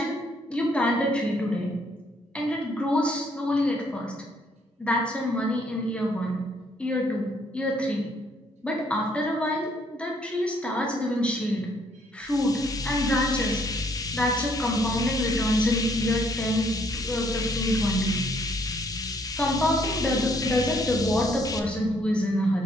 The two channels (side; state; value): both; normal; correlation 0.67